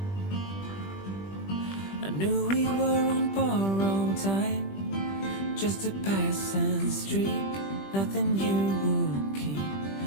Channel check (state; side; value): late; right; 20 ms